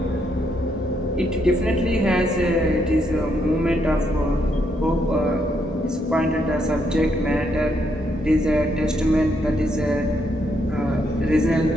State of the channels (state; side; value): normal; both; correlation 0.76